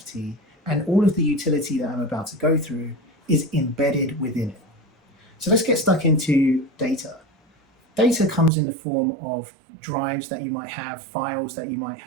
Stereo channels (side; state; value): left; drops out; at 8.5 s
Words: and all of the utility that I'm about to go through is embedded within it. So let's get stuck into data. Data comes in the form of drives that you might have, files that you might